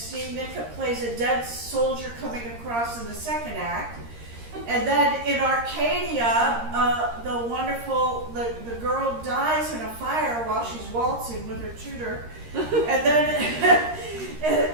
Nicka plays a dead soldier coming across in the second act. And then in Arcadia, the girl dies in a fire while she's waltzing with her tutor. And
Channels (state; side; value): late; left; 13 ms